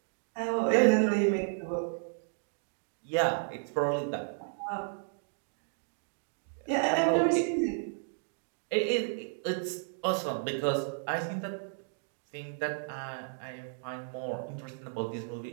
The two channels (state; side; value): silent; left; digital silence